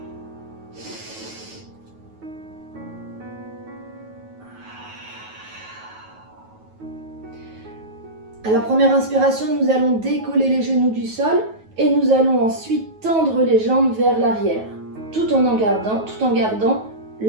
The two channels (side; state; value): left; late; 9.3 ms